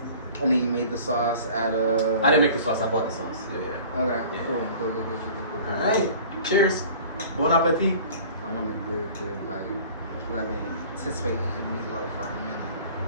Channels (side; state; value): both; inverted; correlation -0.45